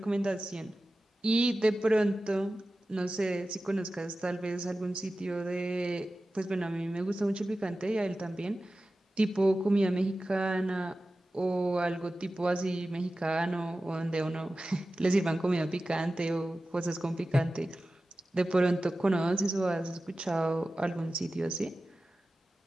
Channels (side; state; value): both; normal; correlation 0.95